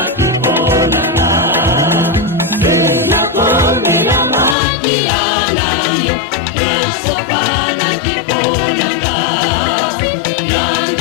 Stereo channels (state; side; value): drops out; right; at 4.5 s